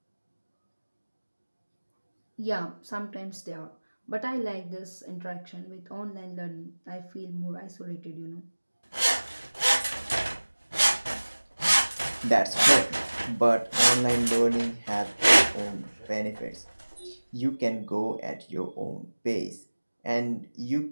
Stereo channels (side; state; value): both; inverted; correlation -1.00